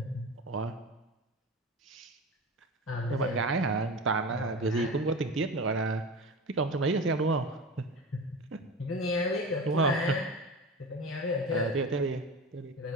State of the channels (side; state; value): both; normal; correlation 0.30